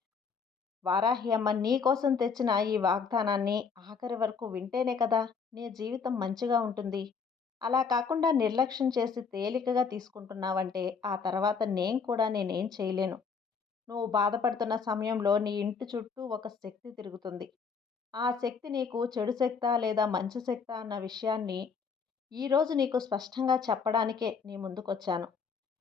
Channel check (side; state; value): right; quieter; 5.7 dB